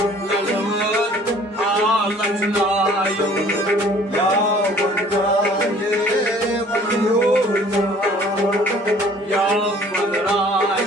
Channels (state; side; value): normal; both; correlation 0.53